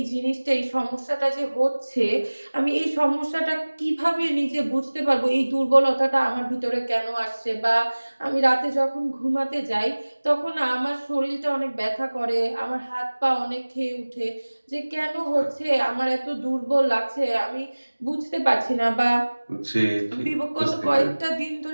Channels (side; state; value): both; inverted; correlation -1.00